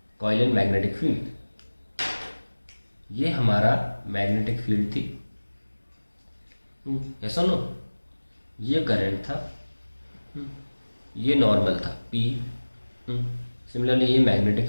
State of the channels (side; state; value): both; inverted; correlation -1.00